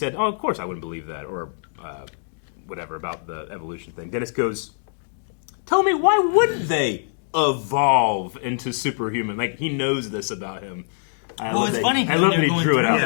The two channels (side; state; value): right; silent; digital silence